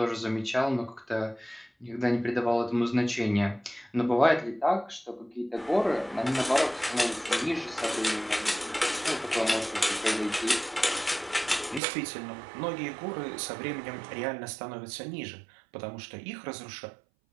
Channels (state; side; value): drops out; left; at 11.8 s